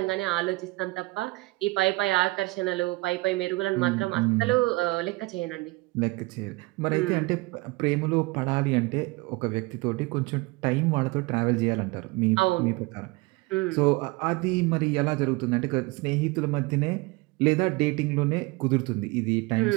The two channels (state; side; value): quieter; left; 23.0 dB